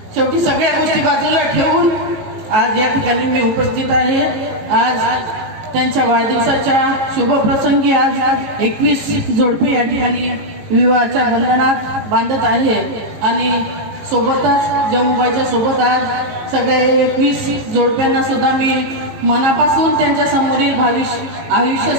शेवटी सगळ्या गोष्टी बाजूला ठेवून आज या ठिकाणी मी उपस्थित आहे. आज त्यांच्या वाढदिवसाच्या शुभप्रसंगी आज 21 जोडपे या ठिकाणी विवाहाच्या बंधनात बांधत आहे आणि सोबतच जम्मूबाईच्या सोबत आज सगळ्या 21 जोडप्यांना सुद्धा मी मनापासून त्यांच्या समोरील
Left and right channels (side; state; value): left; late; 19 ms